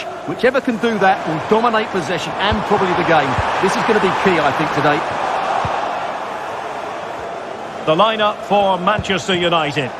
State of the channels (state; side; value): identical; both; correlation 1.00